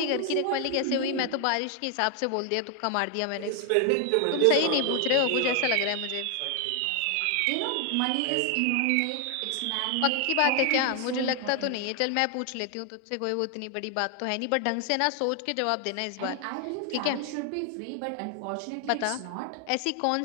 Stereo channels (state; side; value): different; both; correlation 0.00